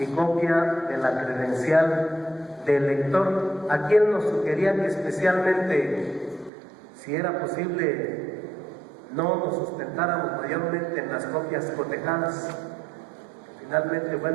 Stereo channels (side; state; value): left; drops out; at 6.5 s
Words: copia de la credencial del lector. Aquí él nos sugería que especialmente, si era posible, no nos sustentáramos mayormente en las copias cotejadas. Finalmente,